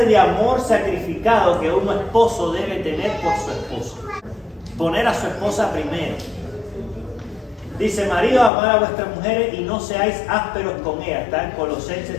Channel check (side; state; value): right; drops out; at 8.5 s